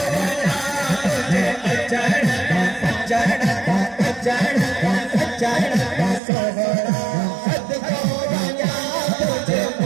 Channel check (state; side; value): drops out; left; at 6.2 s